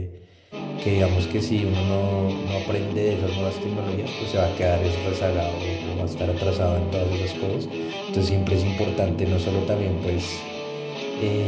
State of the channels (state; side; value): identical; both; correlation 1.00